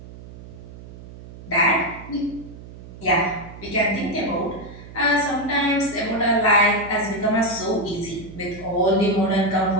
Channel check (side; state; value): right; noise; hum, 16 dB below the sound